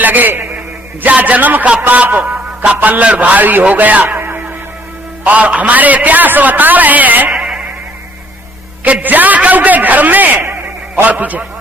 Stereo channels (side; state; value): both; normal; correlation 0.62